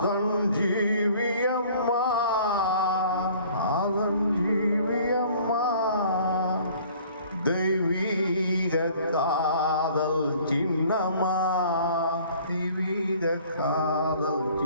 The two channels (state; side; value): inverted; both; correlation -0.53